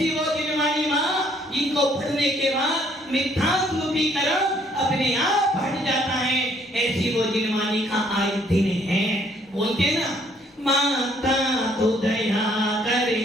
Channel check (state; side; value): normal; both; correlation 0.64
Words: वो जिनवानी माँ जिनको पढ़ने के बाद मिथ्यात्व रूपी कर्म अपने आप हट जाता है। ऐसी वो जिनवानी का आज दिन है। बोलते ना, माता तू दया